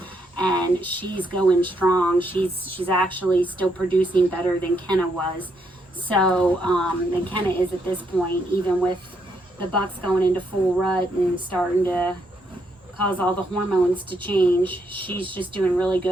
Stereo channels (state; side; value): normal; both; correlation 0.76